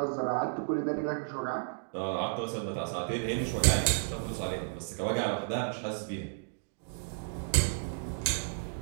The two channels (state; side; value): silent; left; digital silence